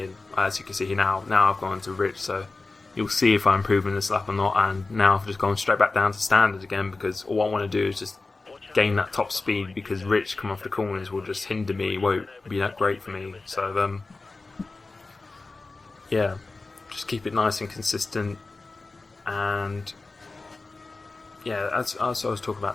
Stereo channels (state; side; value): quieter; right; 3.5 dB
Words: as you can see here now I've gone to rich, so you'll see if I'm improving this lap or not. And now I've just gone straight back down to standard again, because all I want to do is just gain that top speed, because rich come off the corners will just hinder me, it won't be that great for me. So yeah, just keep it nice and consistent. And yeah, as I was talking